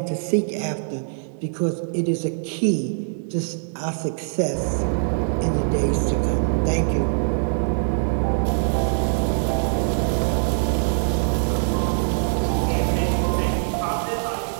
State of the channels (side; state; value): left; silent; 63 dB below the other